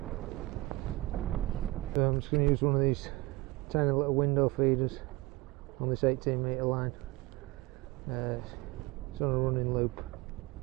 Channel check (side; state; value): left; quieter; 20.9 dB